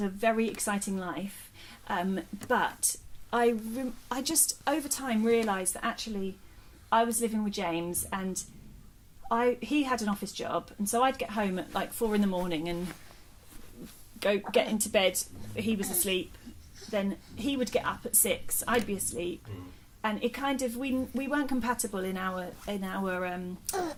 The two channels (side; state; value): both; identical; correlation 1.00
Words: a very exciting life. But I just over time realised that actually I was living with James, and he had an office job, and so I'd get home at like 4 a.m. and go get into bed. He was asleep. Then he would get up at 6. I'd be asleep, and it kind of we weren't compatible in our